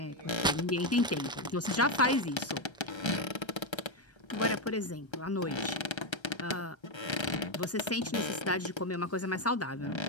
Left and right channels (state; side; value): normal; both; correlation 0.06